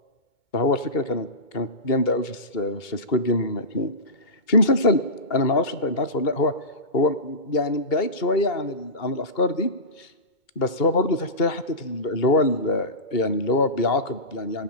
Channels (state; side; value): late; right; 2.2 ms